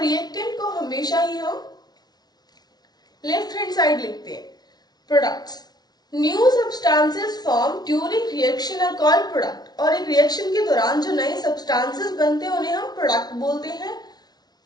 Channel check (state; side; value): late; right; 0.19 ms